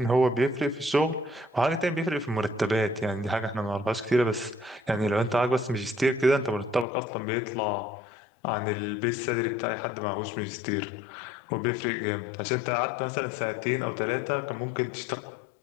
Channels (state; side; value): drops out; right; at 6.9 s